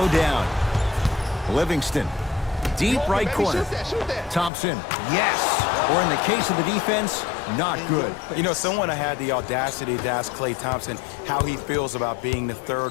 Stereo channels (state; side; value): drops out; right; at 4.5 s